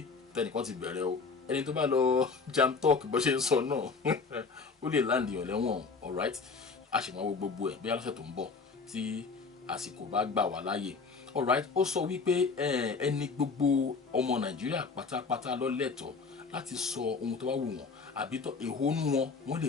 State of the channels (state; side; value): quieter; right; 4.7 dB